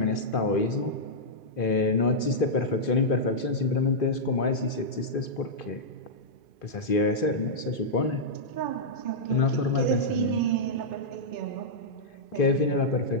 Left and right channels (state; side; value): late; right; 2.5 ms